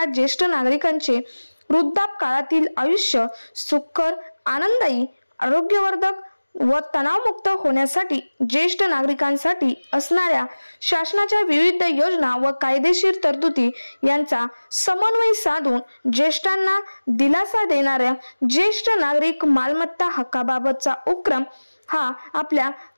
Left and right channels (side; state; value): both; inverted; correlation -1.00